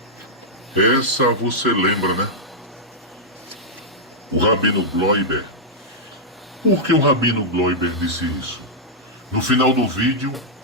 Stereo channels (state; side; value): normal; both; correlation -0.07